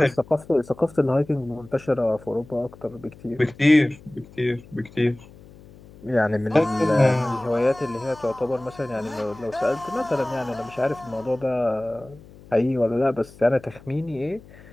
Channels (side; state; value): left; noise; hum, 22 dB below the sound